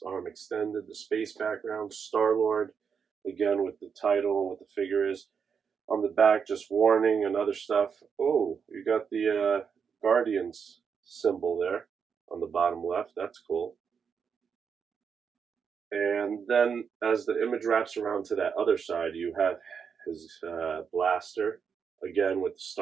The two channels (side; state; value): left; quieter; 6.5 dB